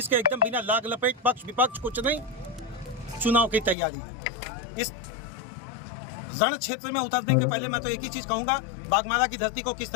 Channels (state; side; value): drops out; right; at 3.8 s